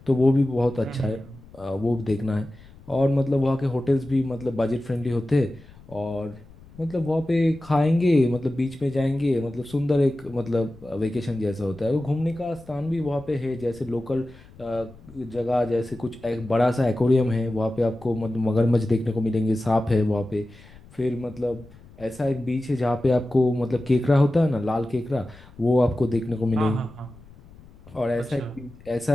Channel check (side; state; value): left; noise; rumble, 22 dB below the sound